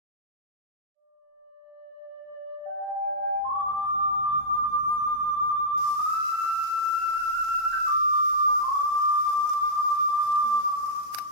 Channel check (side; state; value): left; late; 38 ms